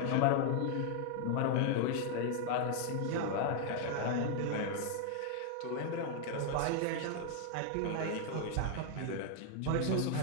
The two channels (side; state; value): both; different; correlation 0.00